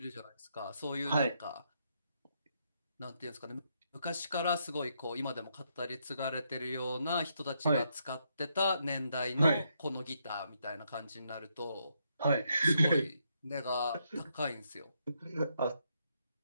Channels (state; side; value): inverted; both; correlation -0.77